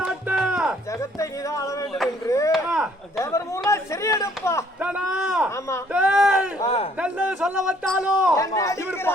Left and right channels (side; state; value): both; normal; correlation 0.63